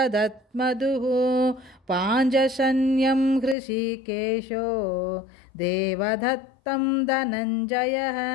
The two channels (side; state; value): right; drops out; at 3.6 s